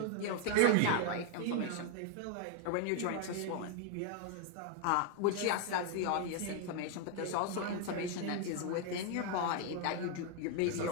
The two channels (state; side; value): different; both; correlation 0.00